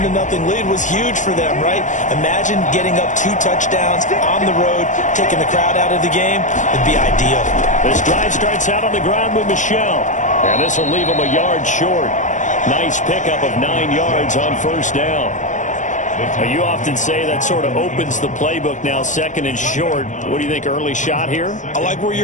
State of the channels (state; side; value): late; right; 0.36 ms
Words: lead was huge for them, right? Imagine getting up 2 touchdowns on the road, taking the crowd out of the game. It'd be ideal. This drive starts out on the ground with Michel. And this will leave them a yard short. Nice pickup of 9 yards on 1st down. You often say that sort of opens the playbook now, 2nd and short. What do you think, early shot here? I like where